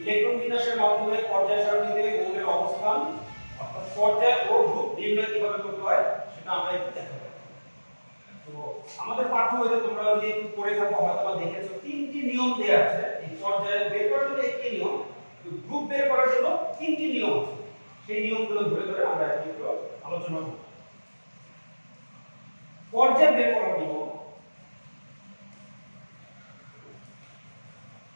ইলেকট্রন বিন্যাসের মাধ্যমে পর্যায় সারণীতে মৌলের অবস্থান অর্থাৎ পর্যায় ও গ্রুপ নির্ণয় কিভাবে করতে হয় সেটা আমরা একটু দেখাবো। তো আমাদের পাঠ্য বইতে তোমরা যদি একটু পড়ে থাকো হয়তো দেখেছো তিনটি নিয়ম দেয়া আছে। এই পর্যায় বের করার জন্য একটি নিয়ম, গ্রুপ বের করার জন্য তিনটি নিয়ম আছে। সেই নিয়মগুলো ধরে ধরে আমরা একটু আলোচনা করব। পর্যায় বের করার নিয়ম।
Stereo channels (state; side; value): inverted; both; correlation -1.00